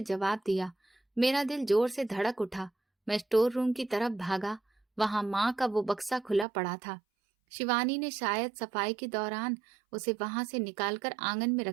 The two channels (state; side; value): drops out; left; at 6.5 s